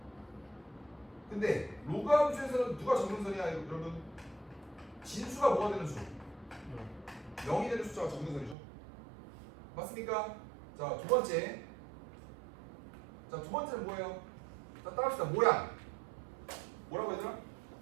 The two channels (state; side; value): drops out; left; at 8.6 s